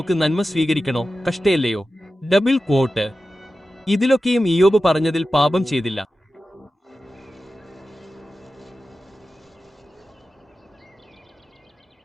നന്മ സ്വീകരിക്കണോ, കഷ്ടയല്ലയോ? Double quote. ഇതിലൊക്കെയും ഇയ്യോബ് പറഞ്ഞതിൽ പാപം ചെയ്തില്ല.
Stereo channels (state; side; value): normal; both; correlation 0.93